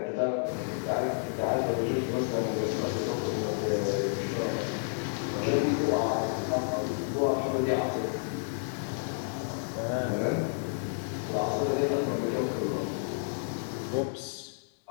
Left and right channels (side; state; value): right; silent; digital silence